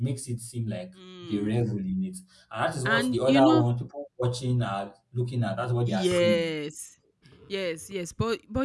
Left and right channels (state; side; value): identical; both; correlation 1.00